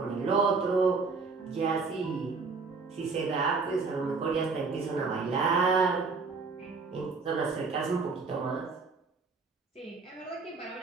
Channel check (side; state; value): left; quieter; 4.5 dB